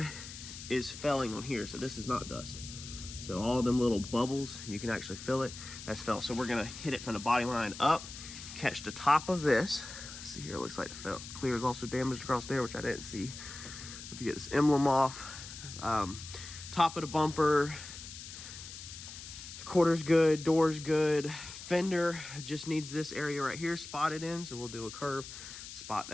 is felling on here, so this is not dust. So all them little bubbles, you can actually feel it, that's fell. So we're gonna hit it from the body line up, catch the top of this. Let's see here, it looks like the clear is also damaged across there, which I didn't see. If you get this emblem off, top of the bumper, quarter's good, door's good. Fender just needs this area right here spotted in, so we'll do a curve, spot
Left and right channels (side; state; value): left; noise; hiss, 12 dB below the sound